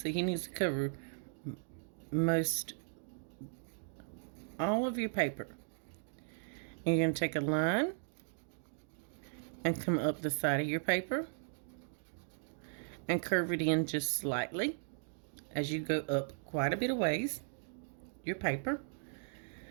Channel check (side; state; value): left; silent; digital silence